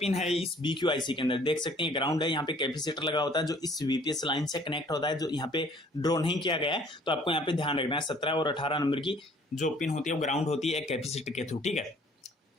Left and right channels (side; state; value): both; normal; correlation 0.56